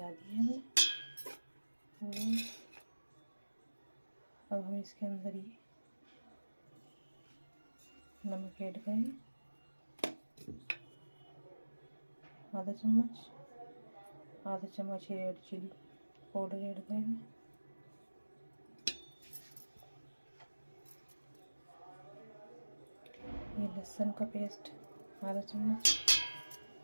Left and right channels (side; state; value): both; inverted; correlation -1.00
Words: दी है हमने। अब हम इसके अंदर ये नमक ऐड करेंगे, आधा चम्मच रेड चिली पाउडर ऐड करेंगे, ये लहसुन का पेस्ट आधा चम्मच,